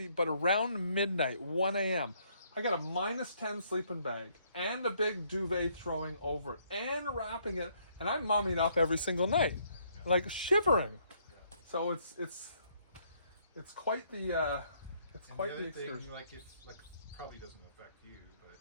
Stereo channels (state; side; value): inverted; both; correlation -0.68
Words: But around midnight, 1 a.m., I got a -10 sleeping bag and a big duvet throwing over it and wrapping it, and I'm mumming up every single night, like shivering. Yeah. So it's quite the it's And quite the the other excursion. thing, like probably doesn't affect you, but